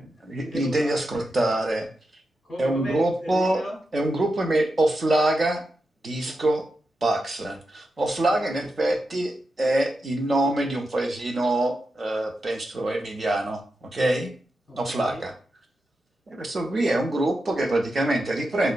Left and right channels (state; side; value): normal; both; correlation 0.88